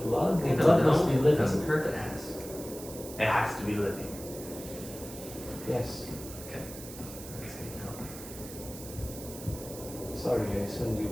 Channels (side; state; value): right; noise; hiss, 13 dB below the sound